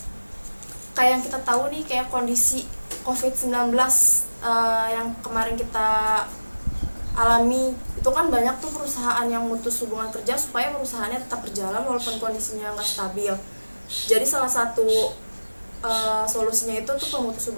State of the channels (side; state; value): both; inverted; correlation -1.00